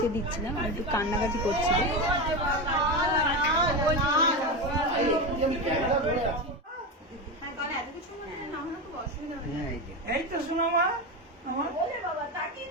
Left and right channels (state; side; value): normal; both; correlation 0.18